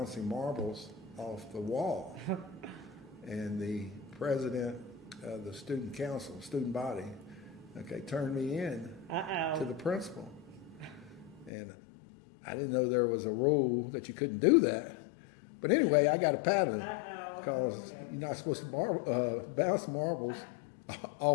marbles off the wall. And the president of the student council, student body, turned me in to the principal. And I didn't know there was a rule that you couldn't do that. But anyway, I got a paddling because you're not supposed to bounce marbles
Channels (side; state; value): right; drops out; at 11.5 s